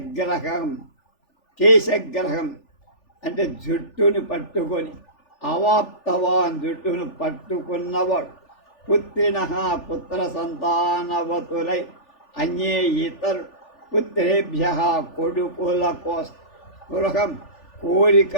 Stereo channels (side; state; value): right; late; 3.4 ms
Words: కేశగ్రహం అంటే జుట్టును పట్టుకొని అవాప్తవాన్ జుట్టును పట్టుకున్నవాడు పుత్రిణ పుత్ర సంతానవతులై అన్యే ఇతరు పుత్రేభ్య కొడుకుల స్పృహం